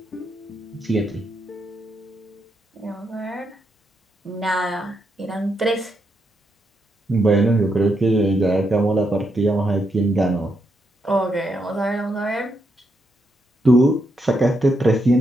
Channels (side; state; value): both; normal; correlation 0.81